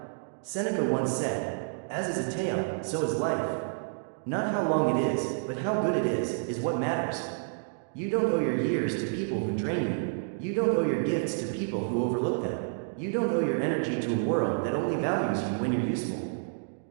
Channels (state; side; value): silent; left; digital silence